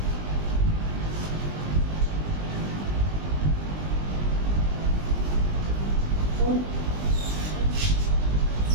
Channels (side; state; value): left; late; 20 ms